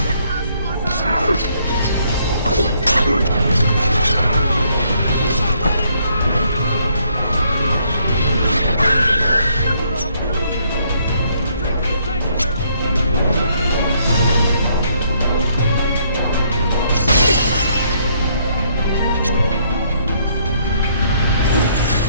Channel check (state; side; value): inverted; both; correlation -0.69